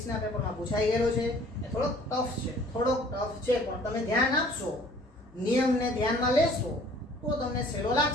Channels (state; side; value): normal; both; correlation 0.54